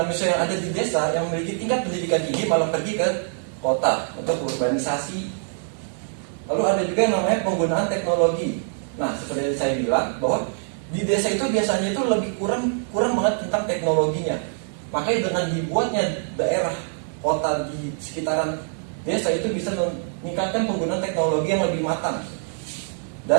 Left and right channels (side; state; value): left; silent; 63 dB below the other